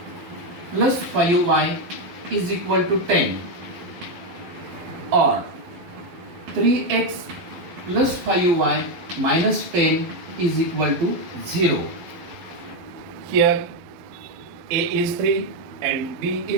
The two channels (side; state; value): left; late; 12 ms